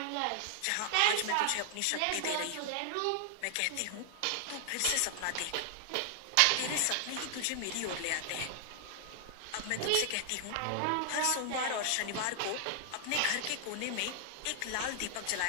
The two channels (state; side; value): different; both; correlation 0.00